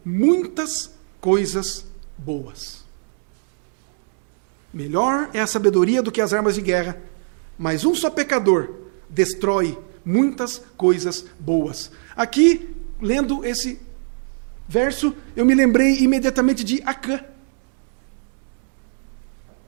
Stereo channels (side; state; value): left; silent; digital silence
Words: muitas coisas boas. Melhor é a sabedoria do que as armas de guerra, mas um só pecador destrói muitas coisas boas. Aqui, lendo esse verso, eu me lembrei imediatamente de Acã.